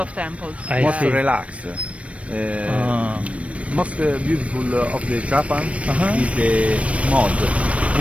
temples. I most see. relax. Most beautiful of the Japan is the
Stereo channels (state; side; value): late; left; 0.063 ms